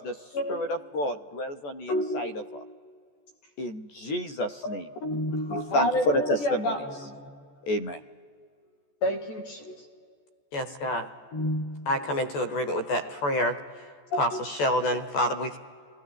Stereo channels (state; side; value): late; right; 14 ms